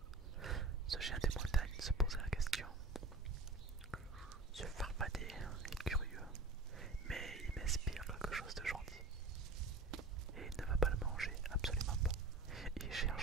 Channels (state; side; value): quieter; left; 3.3 dB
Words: Ce géant des montagnes se posait la question. Ce farfadet est curieux, mais il m'inspire quelque chose de gentil. Et il ne va pas le manger, absolument pas. Il